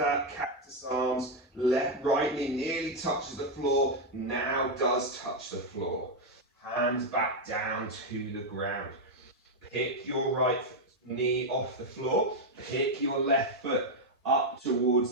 cactus arms. Right knee nearly touches the floor. Now does touch the floor. Hands back down to the ground. Pick your right knee off the floor. Pick your left foot up towards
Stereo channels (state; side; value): normal; both; correlation 0.02